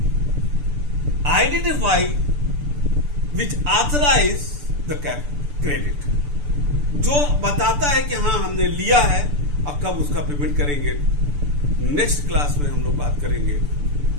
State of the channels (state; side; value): late; left; 6.8 ms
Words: identify which authorise the credit, जो बताता है कि हाँ हमने लिया है, अब कब उसका पेमेंट करेंगे। नेक्स्ट क्लास में हम लोग बात